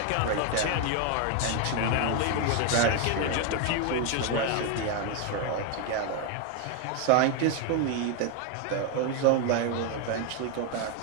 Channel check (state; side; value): different; both; correlation 0.01